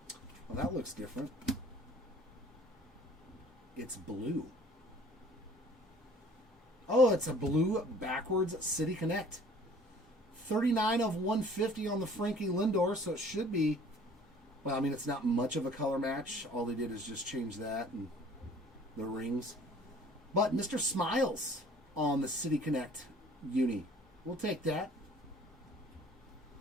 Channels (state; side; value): normal; both; correlation 0.52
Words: That looks different. It's blue. Oh, it's a blue backwards City Connect. 39 of 150 on the Frankie Lindor, so it should be, well, I mean, it's not much of a color match. All they did is just change that and the rings. But Mr. Smiles on the City Connect uni. We'll take that.